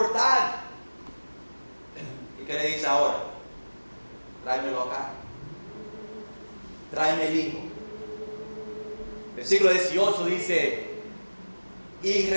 ¿Y qué le dice ahora? Tráemelo acá. Tráeme el hijo. Versículo 18 dice, y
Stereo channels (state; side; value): inverted; both; correlation -1.00